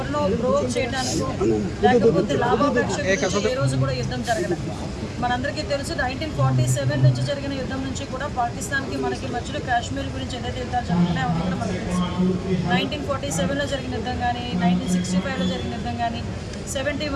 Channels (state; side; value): identical; both; correlation 1.00